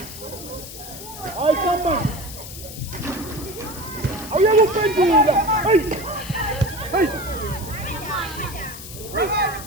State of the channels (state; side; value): noise; left; hiss, 12 dB below the sound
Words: Hayi samba. Awuyakuphendula. Hey.